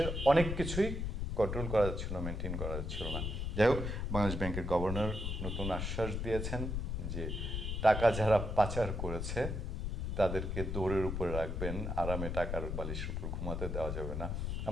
অনেক কিছুই কন্ট্রোল করা যাচ্ছিল, মেনটেন করা যাচ্ছিল না। যাই হোক, বাংলাদেশ ব্যাংকের গভর্নর নতুন আশ্বাস দিয়েছেন যে টাকা যারা পাচার করেছে তাদেরকে দৌড়ের উপরে রাখবেন, আরামে টাকার বালিশের উপর ঘুমাতে দেওয়া যাবে না।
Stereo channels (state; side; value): noise; left; rumble, 2 dB below the sound